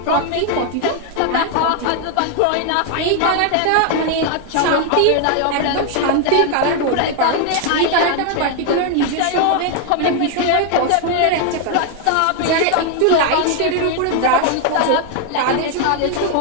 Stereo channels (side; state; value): both; different; correlation 0.00